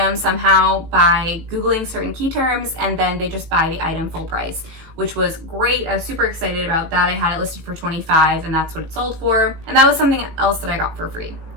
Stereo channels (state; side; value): late; left; 18 ms